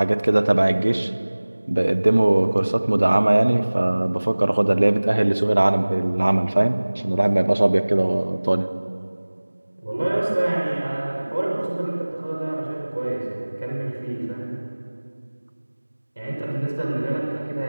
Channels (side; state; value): both; inverted; correlation -1.00